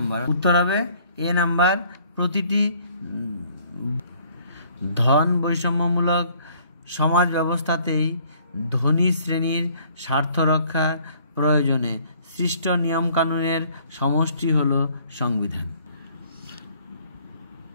উত্তর হবে এ নাম্বার, প্রতিটি ধন বৈষম্যমূলক সমাজ ব্যবস্থাতেই ধনী শ্রেণীর স্বার্থ রক্ষার প্রয়োজনে সৃষ্ট নিয়মকানুনের সমষ্টি হল সংবিধান।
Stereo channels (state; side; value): inverted; both; correlation -0.59